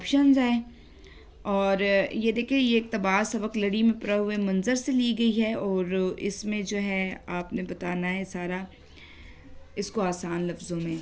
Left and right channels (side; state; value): both; identical; correlation 1.00